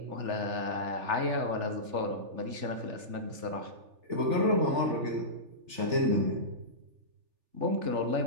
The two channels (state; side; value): late; left; 3.4 ms